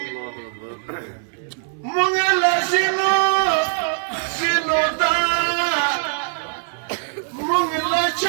مونږ له ځینو دا مونږ له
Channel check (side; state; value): left; silent; 58 dB below the other